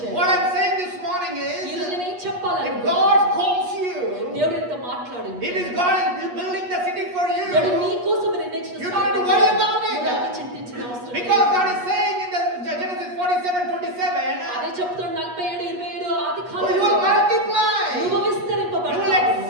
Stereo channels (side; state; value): left; late; 8.3 ms